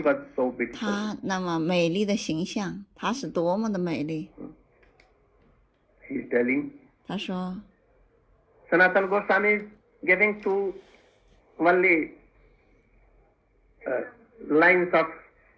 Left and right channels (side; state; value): both; identical; correlation 1.00